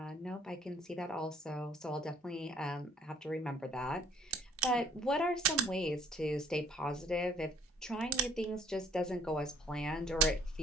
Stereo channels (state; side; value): normal; both; correlation 0.58